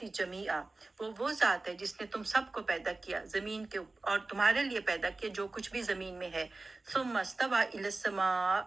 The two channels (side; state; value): left; quieter; 3.3 dB